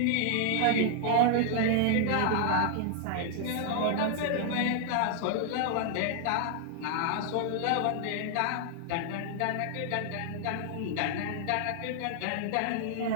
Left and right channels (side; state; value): both; different; correlation 0.00